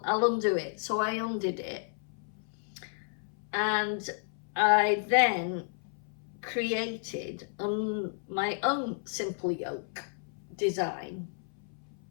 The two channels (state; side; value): silent; right; 56 dB below the other